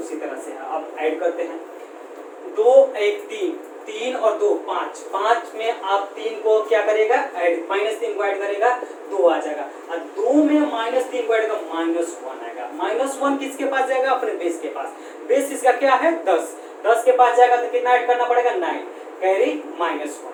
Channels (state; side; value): identical; both; correlation 1.00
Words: तरह से है। अब ऐड करते हैं, 2 1 3, 3 और 2 5, 5 में आप 3 को क्या करेगा ऐड, -3 को ऐड करेगा 2 आ जाएगा, और 2 में -3 को ऐड करेगा -1 आएगा। -1 किसके पास जाएगा, अपने बेस के पास। बेस इसका क्या है 10, 10 के पास जाएगा तो कितना ऐड करना पड़ेगा 9, कैरी -1